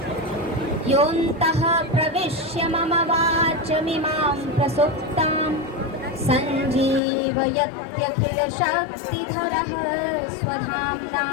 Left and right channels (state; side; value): drops out; right; at 7.0 s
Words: योऽन्तः प्रविश्य मम वाचमिमां प्रसुप्तां सञ्जीवयत्यखिलशक्तिधरः स्वधाम्ना